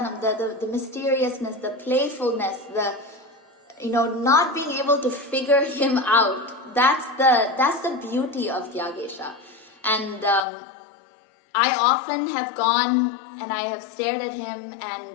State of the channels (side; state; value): right; drops out; at 10.5 s